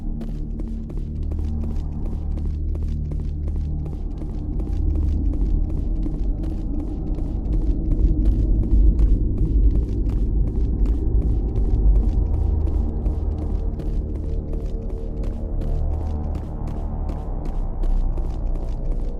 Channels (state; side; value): identical; both; correlation 1.00